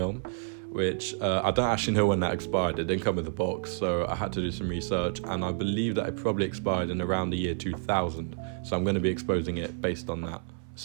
which I don't actually know when that expired. It didn't come with a box, so I had to do some research, and I believe that it probably expired in around the year 2000. So I'm going to be exposing it based on that.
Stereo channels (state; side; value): silent; left; 58 dB below the other